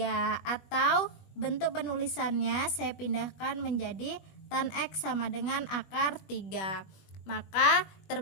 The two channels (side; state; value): right; late; 20 ms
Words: Atau bentuk penulisannya saya pindahkan menjadi tan X sama dengan akar 3. Maka